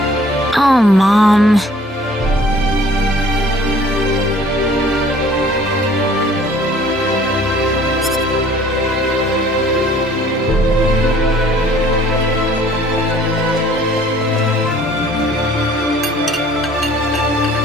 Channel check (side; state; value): both; normal; correlation 0.54